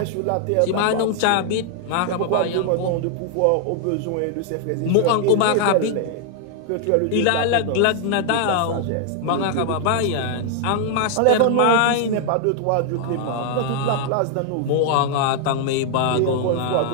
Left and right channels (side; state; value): both; different; correlation 0.00